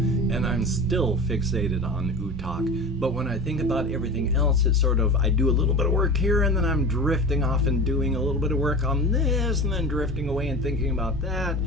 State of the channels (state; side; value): normal; both; correlation 0.32